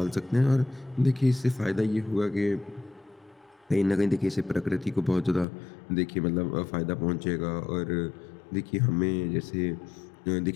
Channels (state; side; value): drops out; right; at 5.5 s